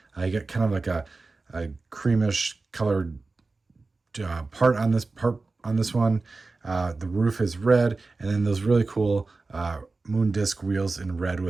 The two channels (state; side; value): quieter; left; 3.7 dB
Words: You get kind of like a creamish colored part on this one. The roof is red, and then those really cool moon disc wheels in red